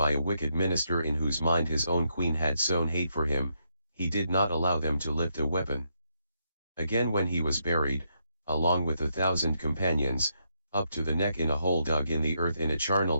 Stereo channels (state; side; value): inverted; both; correlation -0.78